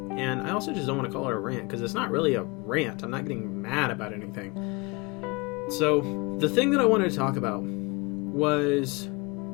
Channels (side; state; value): right; quieter; 26.6 dB